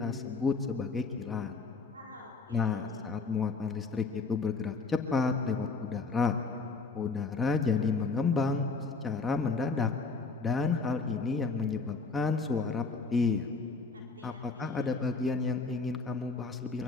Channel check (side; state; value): right; quieter; 4.2 dB